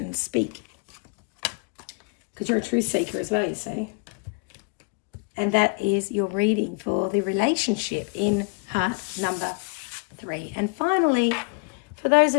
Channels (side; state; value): right; quieter; 33.3 dB